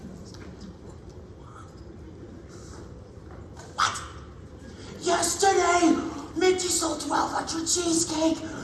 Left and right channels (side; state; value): both; identical; correlation 1.00